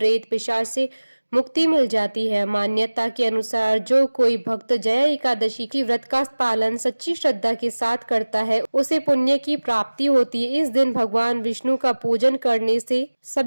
पिशाच से मुक्ति मिल जाती है। मान्यता के अनुसार जो कोई भक्त जया एकादशी की व्रत का पालन सच्ची श्रद्धा के साथ करता है उसे पुण्य की प्राप्ति होती है। इस दिन भगवान विष्णु का पूजन करने से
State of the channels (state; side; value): inverted; both; correlation -1.00